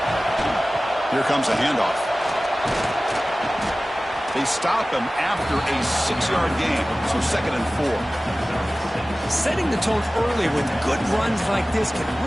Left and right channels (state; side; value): normal; both; correlation 0.97